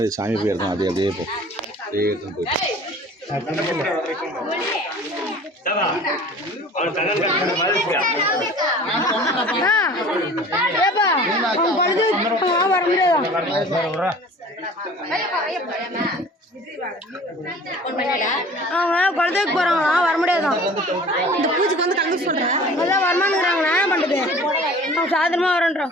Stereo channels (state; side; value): normal; both; correlation 0.45